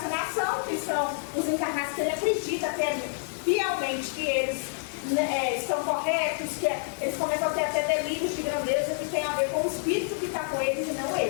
que são os encarnados que ele acredita fielmente que eles estão corretos, que eles começam a ter até delírios de grandeza que tem a ver com o espírito que está com eles e não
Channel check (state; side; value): silent; right; digital silence